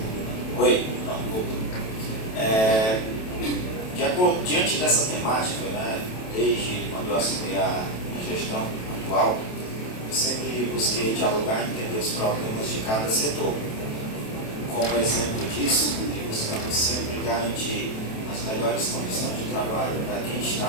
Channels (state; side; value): late; right; 27 ms